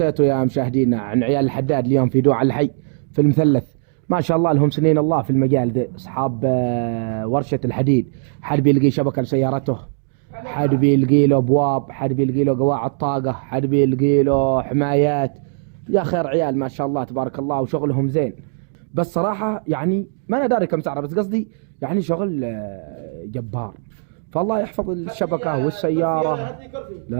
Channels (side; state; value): left; silent; digital silence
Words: يا مشاهدينا عن عيال الحداد اليوم في دوع الحي في المثلث. ما شاء الله لهم سنين الله في المجال ذي، اصحاب ورشة الحديد. حد بيلقي شبكة لسيارته، حد بيلقي له ابواب، حد بيلقي له قواعد طاقة، حد بيلقي له حمايات. يا خير عيال ما شاء الله تبارك الله، وشغلهم زين. بس صراحة يعني ما انا داري كم سعره، بس قصدي يعني شغل جبار. فالله يحفظ الشبكة والسيارة.